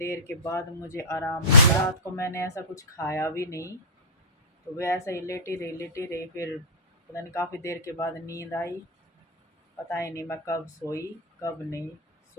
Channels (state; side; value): normal; both; correlation -0.17